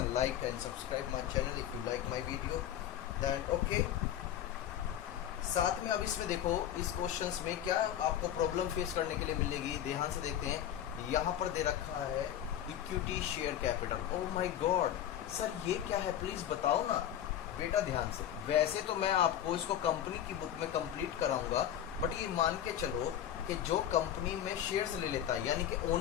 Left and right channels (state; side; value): quieter; right; 10.9 dB